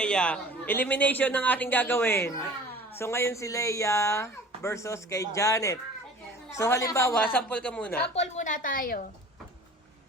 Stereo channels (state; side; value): normal; both; correlation 0.44